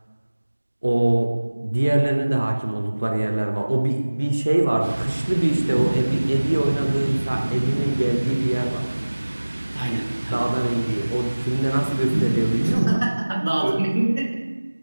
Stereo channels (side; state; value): both; inverted; correlation -1.00